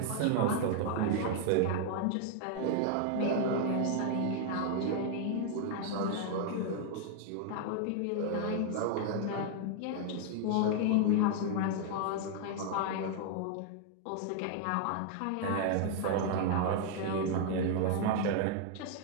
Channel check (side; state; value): both; different; correlation 0.00